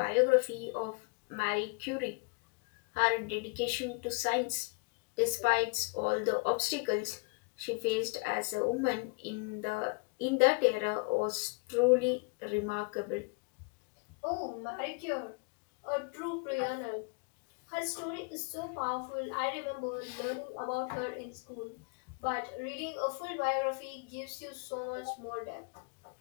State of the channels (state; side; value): quieter; right; 32.9 dB